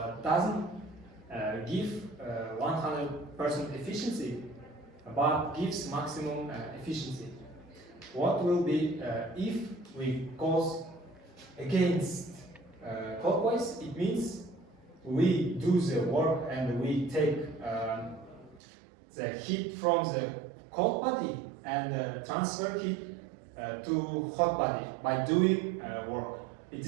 doesn't give 100% efficiency, but gives maximum efficiency. What will be if we goes against clockwise? It means we do the work and we take the heat from the cold body and transfer heat to hot body by doing work. It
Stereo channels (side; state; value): left; drops out; at 18.6 s